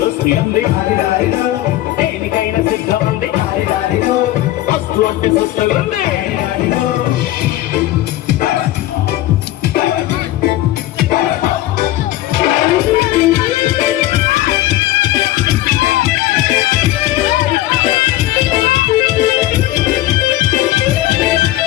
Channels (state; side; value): quieter; right; 15.4 dB